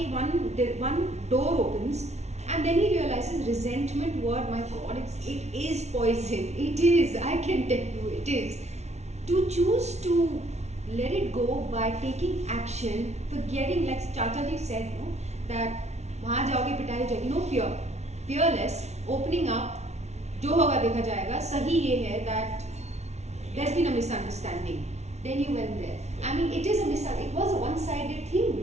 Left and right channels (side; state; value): left; late; 0.32 ms